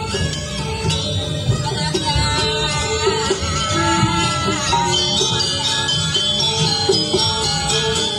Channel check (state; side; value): identical; both; correlation 1.00